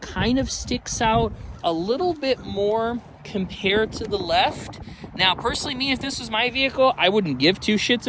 of sticks out a little bit more compared to the left. Now, personally, me, if this was my vehicle, I wouldn't give two shits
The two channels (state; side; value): identical; both; correlation 1.00